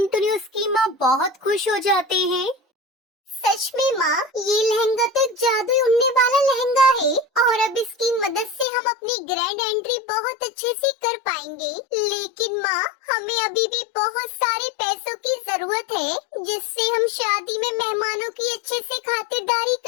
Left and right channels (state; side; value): drops out; right; at 8.7 s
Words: उसकी माँ बहुत खुश हो जाते हैं। सच में माँ, ये लहंगा तो जादू उड़ने वाला लहंगा है और अब इसकी मदद से हम अपनी ग्रैंड एंट्री बहुत अच्छे से कर पाएंगे। लेकिन माँ, हमें अभी भी बहुत सारे पैसों की जरूरत है, जिससे हम शादी में मेहमानों की अच्छे से खातिरदारी